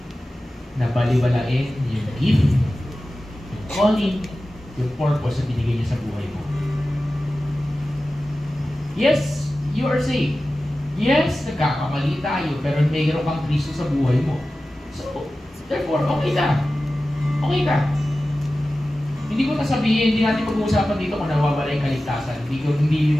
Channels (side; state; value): both; normal; correlation 0.95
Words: na baliwalain yung gift, yung calling, yung purpose na binigay niya sa buhay mo. Yes, you are saved. Yes, nagkakamali tayo, pero mayroon kang Kristo sa buhay mo. So, therefore, okay ka. Okay ka. Hindi ko nasabihin, hindi natin pag-uusapan dito kung nawawala yung kaligtasan. Hindi